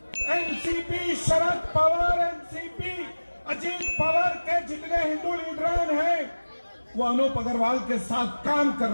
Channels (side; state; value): both; inverted; correlation -1.00